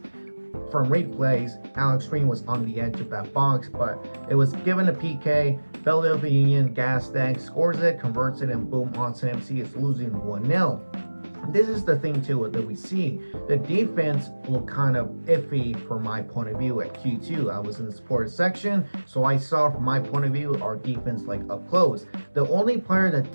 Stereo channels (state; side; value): inverted; both; correlation -1.00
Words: from replays, Alex Green was on the edge of that box, but it was given a PK. Philadelphia Union gas tank scores it, converts it, and boom, Austin FC is losing 1-0. This is the thing too that we see. The defense looked kind of iffy from my point of view at Q2. I was in the sports section, so I saw from my point of view our defense like up close. The only player that